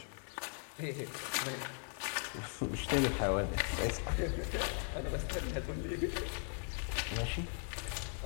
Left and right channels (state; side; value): silent; right; 52 dB below the other